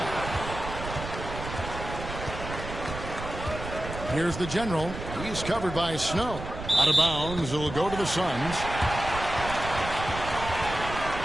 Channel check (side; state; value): right; noise; rumble, 8 dB below the sound